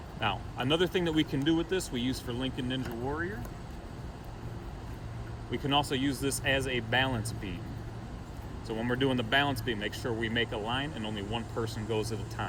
Now, another thing that we can do with this, we use for Lincoln Ninja Warrior. We can also use this as a balance beam. So when we're doing the balance beam, make sure we make a line and only one person goes at a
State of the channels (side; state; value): both; identical; correlation 1.00